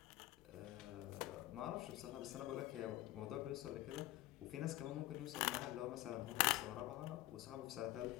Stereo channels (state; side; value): quieter; right; 16.5 dB